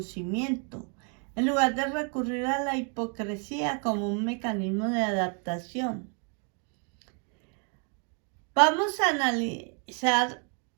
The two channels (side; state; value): left; quieter; 38.9 dB